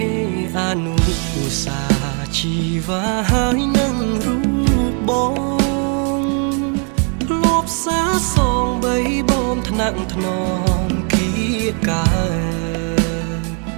អនុសាជីវ៉ាហើយនឹងរូបបងធ្លាប់សាសងបីបំថ្នាក់ថ្នមគៀកើ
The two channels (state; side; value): quieter; left; 38.7 dB